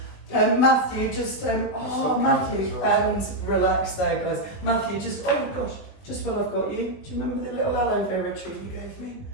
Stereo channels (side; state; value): right; late; 20 ms